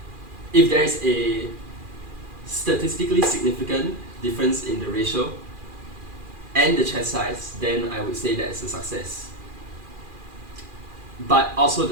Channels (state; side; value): late; left; 2.4 ms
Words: If there is a statistically significant difference in the ratio and the chest size, then I would say that it's a success. But also